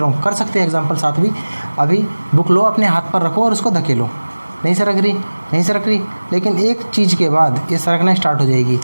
हूँ, कर सकते हैं एग्जांपल साथ भी। अभी बुक लो, अपने हाथ पर रखो और उसको धकेलो, नहीं सरक रही, नहीं सरक रही, लेकिन एक चीज़ के बाद ये सरकना स्टार्ट हो जाएगी।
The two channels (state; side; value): inverted; both; correlation -1.00